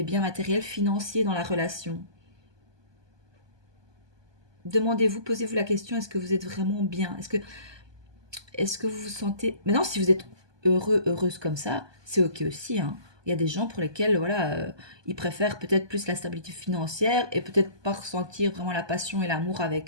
biens matériels, financiers dans la relation. Demandez-vous, posez-vous la question, est-ce que vous êtes vraiment bien? Est-ce que vous vous sentez... Maintenant, si vous êtes heureux, heureuse comme ça, c'est ok aussi, hein. Il y a des gens pour lesquels, voilà, ils préfèrent peut-être plus la stabilité financière et peut-être pas ressentir vraiment la passion et l'amour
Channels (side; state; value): left; late; 1.2 ms